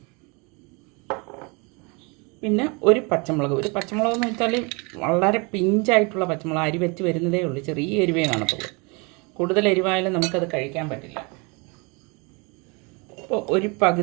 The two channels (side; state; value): left; quieter; 30.1 dB